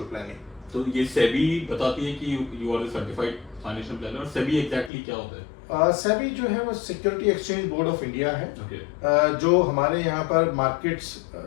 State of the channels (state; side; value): drops out; right; at 4.9 s